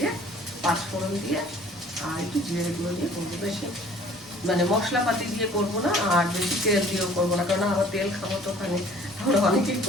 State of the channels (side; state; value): both; normal; correlation 0.53